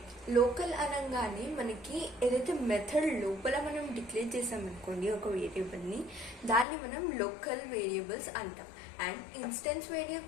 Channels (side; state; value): right; drops out; at 6.7 s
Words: local అనగానే మనకి ఏదైతే method లోపల మనం డిక్లేర్ చేసామనుకోండి ఒక వేరియబుల్ని, దాన్ని మనం లోకల్ వేరియబుల్స్ అంటాం. అండ్ ఇన్స్టెన్స్